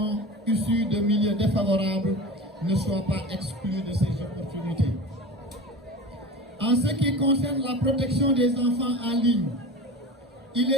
issus de milieux défavorables ne soient pas exclus de ces opportunités. En ce qui concerne la protection des enfants en ligne, il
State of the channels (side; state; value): both; normal; correlation 0.31